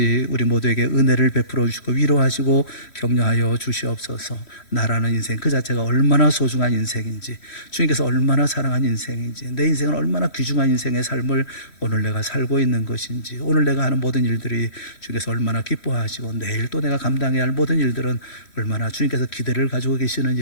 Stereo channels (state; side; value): late; right; 3.1 ms